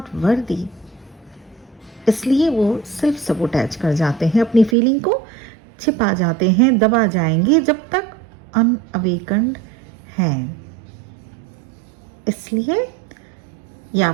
worthy. इसलिए वो सेल्फ सबोटैज कर जाते हैं, अपनी फीलिंग को छिपा जाते हैं, दबा जाएंगे जब तक अनअवेकन्ड हैं। इसलिए ये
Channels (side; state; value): left; drops out; at 4.8 s